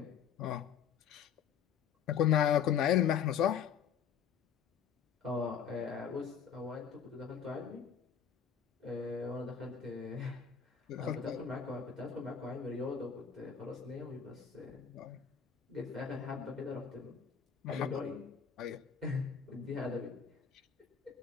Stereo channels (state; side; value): quieter; right; 7.7 dB